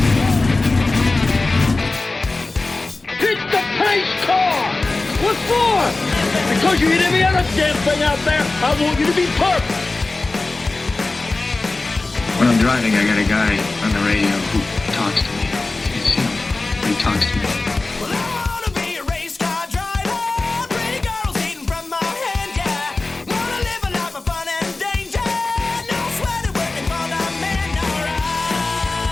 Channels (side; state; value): right; quieter; 3.3 dB